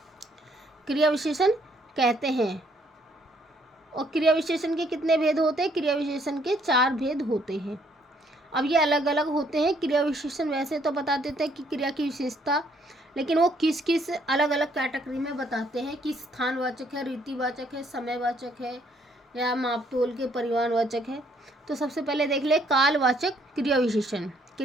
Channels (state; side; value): normal; both; correlation 0.67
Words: क्रिया विशेषण कहते हैं। और क्रिया विशेषण के कितने भेद होते हैं? क्रिया विशेषण के 4 भेद होते हैं। अब ये अलग अलग होते हैं। क्रिया विशेषण वैसे तो बता देते हैं कि क्रिया की विशेषता, लेकिन वो किस किस अलग अलग कैटेगरी में बताते हैं कि स्थानवाचक है, रीतिवाचक है, समयवाचक है, या मापतोल के परिमाणवाचक है। तो सबसे पहले देख ले कालवाचक क्रिया विशेषण।